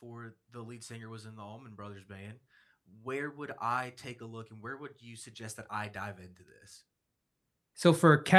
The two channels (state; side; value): identical; both; correlation 1.00